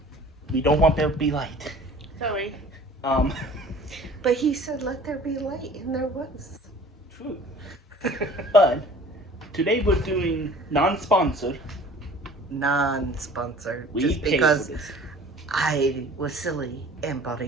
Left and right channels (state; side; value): normal; both; correlation 0.47